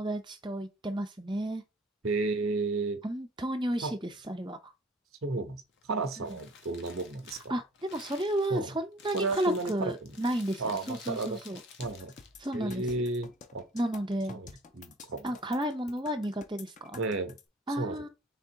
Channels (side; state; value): both; normal; correlation 0.50